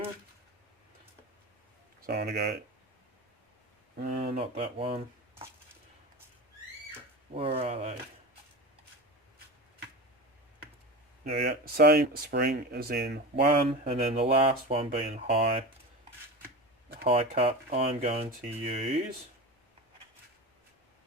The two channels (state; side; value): normal; both; correlation 0.28